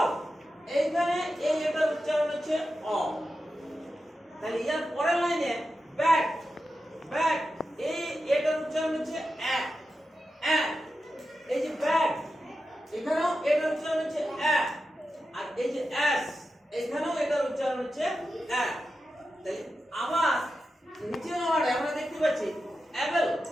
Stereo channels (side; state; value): both; normal; correlation 0.90